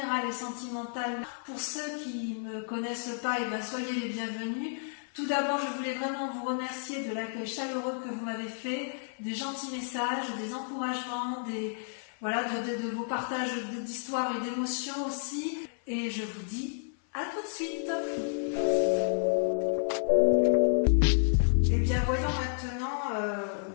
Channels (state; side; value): silent; right; 57 dB below the other